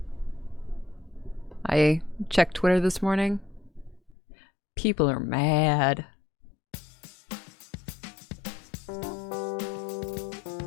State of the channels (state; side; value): drops out; right; at 4.2 s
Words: I checked Twitter this morning. People are mad.